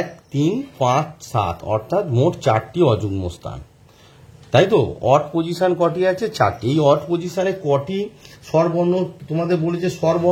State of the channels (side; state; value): both; identical; correlation 1.00